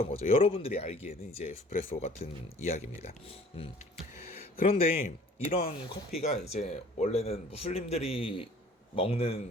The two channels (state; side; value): normal; both; correlation 0.51